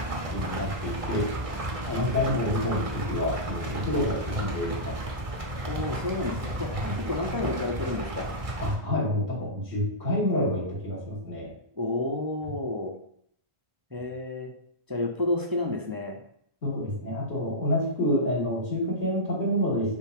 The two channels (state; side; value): late; left; 1.6 ms